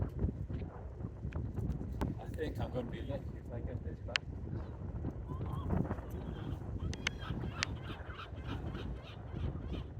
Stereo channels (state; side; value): identical; both; correlation 1.00